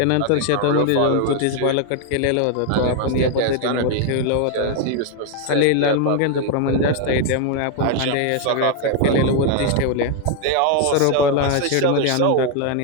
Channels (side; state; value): both; different; correlation 0.01